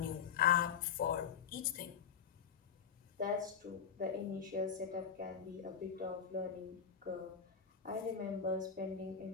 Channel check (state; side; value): quieter; right; 7.4 dB